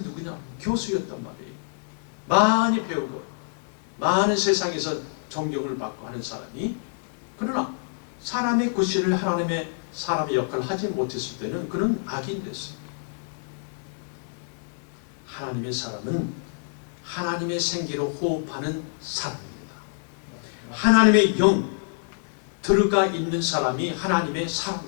누구냐? 교수였단 말이에요. 많이 배우고 많은 세상에서 존경을 받고 하는 사람이, 그러나 사람의 구실을 하나님의 사람의 역할을 하지 못했을 때는 그는 악인 됐어요. 하나님의 사람은 하나님의 생기로 호흡하는 사람입니다. 하나님의 영 들어가 있는 사람이 하나님의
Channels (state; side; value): silent; right; digital silence